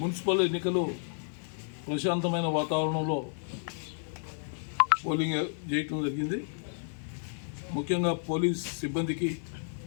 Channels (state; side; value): silent; right; 57 dB below the other